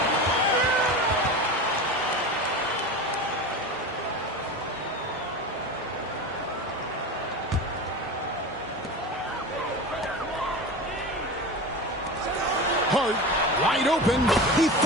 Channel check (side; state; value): both; normal; correlation 0.28